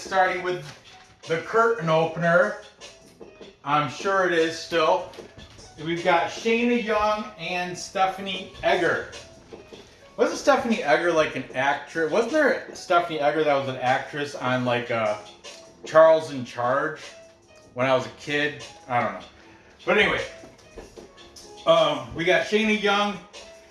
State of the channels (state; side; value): identical; both; correlation 1.00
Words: with the curtain opener. I'm sure it is still. We've got Shayna Young and Stephanie Edgar. Wasn't Stephanie Edgar like an actress? Wasn't there Stephanie Edgar that was an actress on like Charles in Charge when I was a kid? I don't know. But anyway, we got Shayna Young,